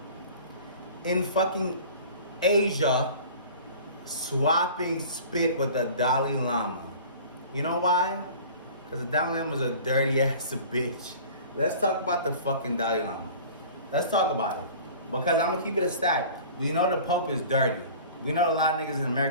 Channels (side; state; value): both; inverted; correlation -0.43